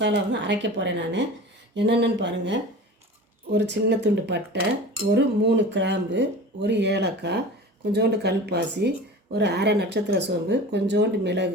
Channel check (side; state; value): both; normal; correlation 0.36